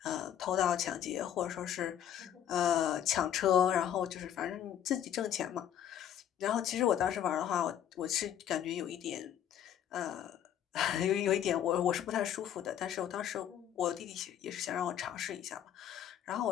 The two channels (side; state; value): right; quieter; 10.1 dB